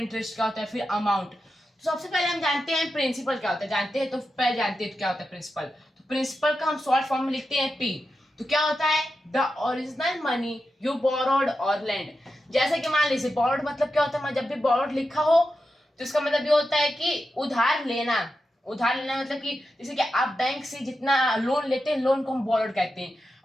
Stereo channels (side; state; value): both; normal; correlation 0.90